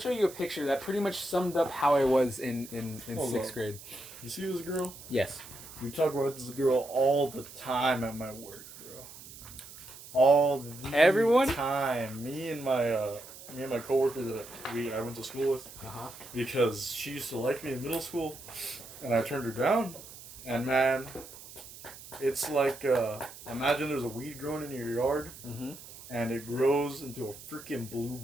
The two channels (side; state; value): right; noise; hiss, 16 dB below the sound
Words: show you a picture that pretty much summed up how I was in Hold 6th on. grade. You see this girl? Yes. We talk about this girl all the time at my work, bro. All the Everyone? time. Me and my coworker that I went to school with, because she used to like me in middle school, and I turned her down. And man, it's like imagine there's a weed growing in your yard, and it grows into a freaking blue